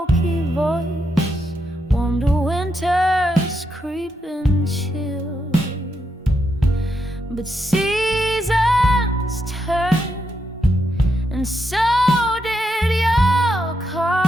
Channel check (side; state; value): both; normal; correlation 0.82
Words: voice warmed a winter's creeping chill. But seasons turn, and so did your